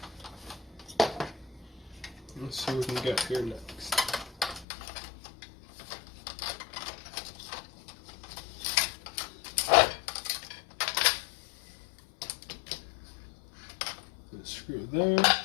let's see what we can get here next. Screw there.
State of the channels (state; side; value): drops out; right; at 4.7 s